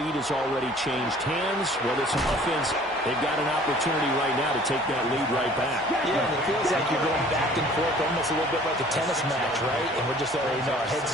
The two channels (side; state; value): left; noise; hum, 27 dB below the sound